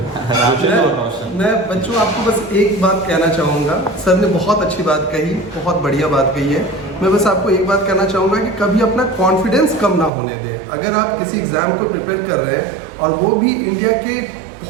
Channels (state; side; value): drops out; left; at 10.1 s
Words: मैं बच्चों आपको बस एक बात कहना चाहूँगा। सर ने बहुत अच्छी बात कही, बहुत बढ़िया बात कही है। मैं बस आपको एक बात कहना चाहूँगा कि कभी अपना कॉन्फिडेंस कम ना होने दें। अगर आप किसी एग्ज़ाम को प्रिपेयर कर रहे हैं, और वो भी इंडिया के